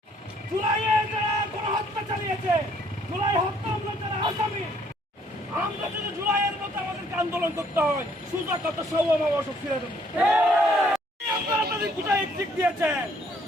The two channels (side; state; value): both; normal; correlation 0.64